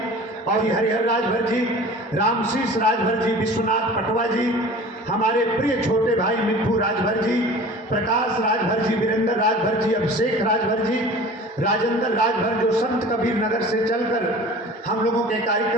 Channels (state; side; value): normal; both; correlation 0.42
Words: और हरिहर राजभर जी, रामशीष राजभर जी, विश्वनाथ पटवा जी, हमारे प्रिय छोटे भाई मिट्ठू राजभर जी, प्रकाश राजभर जी, वीरेंद्र राजभर जी, अभिषेक राजभर जी, राजेंद्र राजभर जो संत कबीर नगर से चलकर हम लोगों के